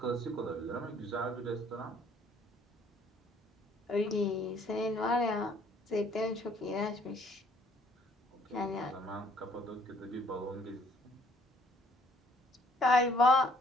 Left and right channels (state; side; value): normal; both; correlation 0.63